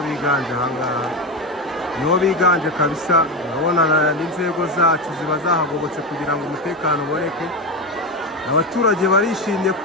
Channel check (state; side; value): normal; both; correlation 0.16